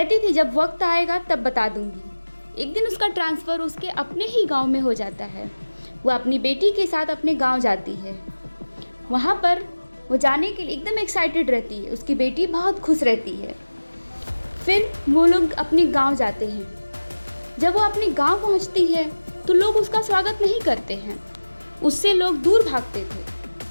थी जब वक्त आएगा तब बता दूंगी। एक दिन उसका ट्रांसफ़र उसके अपने ही गांव में हो जाता है। वह अपनी बेटी के साथ अपने गांव जाती है। वहां पर वो जाने के लिए एकदम एक्साइटेड रहती है। उसकी बेटी बहुत खुश रहती है। फिर वो लोग अपने गांव जाते हैं। जब वो अपने गांव पहुंचती है तो लोग उसका स्वागत नहीं करते हैं। उससे लोग दूर भागते थे।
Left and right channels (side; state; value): both; inverted; correlation -1.00